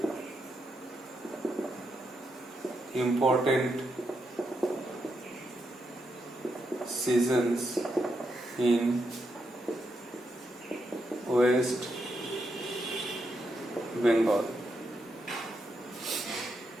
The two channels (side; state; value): both; normal; correlation 0.82